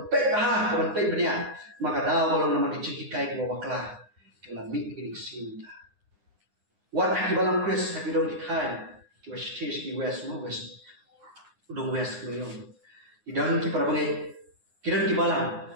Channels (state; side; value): late; left; 9.7 ms